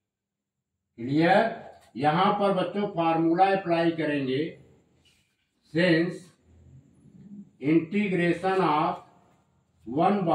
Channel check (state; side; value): identical; both; correlation 1.00